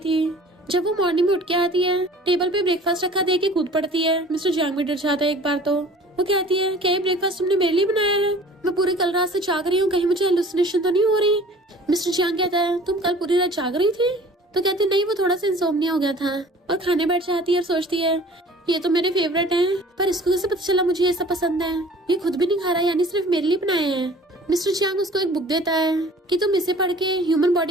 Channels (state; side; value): normal; both; correlation 0.47